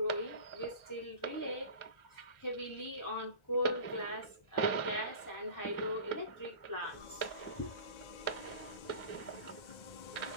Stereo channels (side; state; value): right; late; 1.3 ms